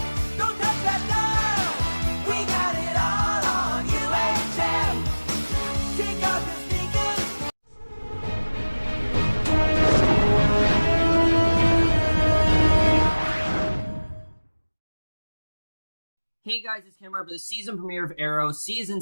Don't touch that dial. We got it all on UHF. Take off your sneakers. Hey guys, it's Cameron for the season premiere of Arrow, Season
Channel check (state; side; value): inverted; both; correlation -1.00